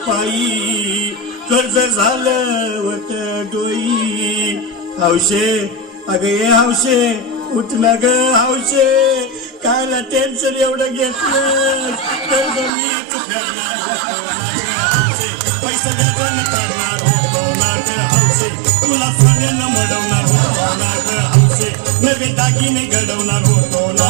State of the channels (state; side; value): drops out; left; at 12.7 s